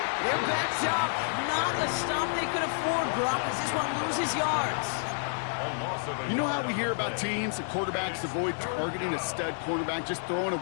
They're backed up. Not a stop they could afford, Brock, as this one loses yards. You know how we hear about teams and quarterbacks avoid targeting a stud quarterback, just throwing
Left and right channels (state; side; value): silent; right; digital silence